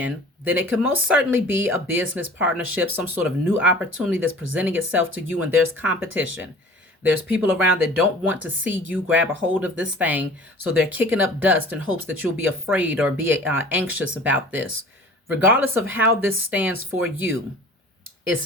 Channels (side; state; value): both; normal; correlation 0.44